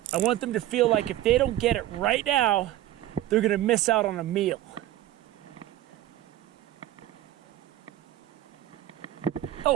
I want them to feel like if they don't get it right now, they're gonna miss out on a meal.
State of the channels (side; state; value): left; quieter; 13.9 dB